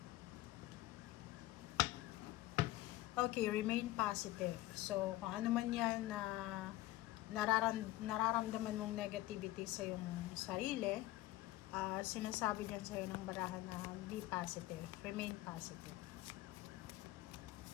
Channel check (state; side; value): quieter; right; 17.2 dB